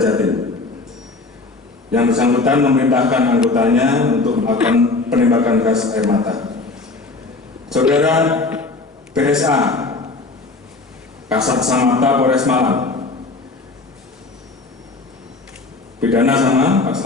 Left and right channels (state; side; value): quieter; right; 3.5 dB